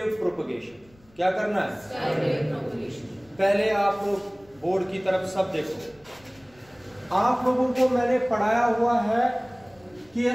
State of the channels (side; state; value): left; noise; rumble, 29 dB below the sound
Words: प्रोपगेशन। क्या करना है? Sky wave propagation. पहले आप लोग बोर्ड की तरफ सब देखो। आप लोगों को मैंने पढ़ाया हुआ है कि